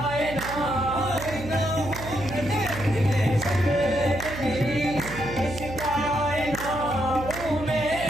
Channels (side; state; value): right; noise; hum, 10 dB below the sound